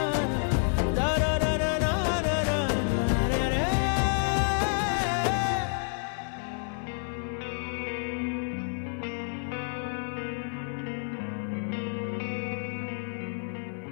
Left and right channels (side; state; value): right; silent; 58 dB below the other